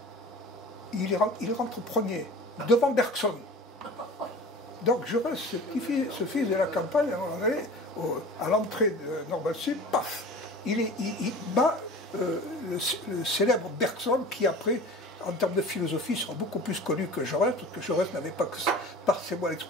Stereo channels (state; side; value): normal; both; correlation 0.39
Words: il rentre premier, devant Bergson. Donc Jaurès, ce fils de la campagne, à l'entrée de Normale Sud, paf, il bat le célèbre Bergson qui après, en termes de philosophie, sera beaucoup plus connu que Jaurès, parce que Jaurès n'avait pas que ça, passez-moi